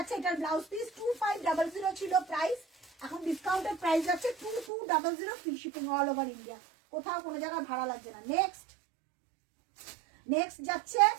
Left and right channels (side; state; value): left; drops out; at 4.7 s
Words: এটার ব্লাউজ পিস 2500 ছিল প্রাইস, এখন ডিসকাউন্টের প্রাইস যাচ্ছে 2200, free shipping all over India, কোথাও কোনো জায়গায় ভাড়া লাগছে না। নেক্সট নেক্সট যাচ্ছে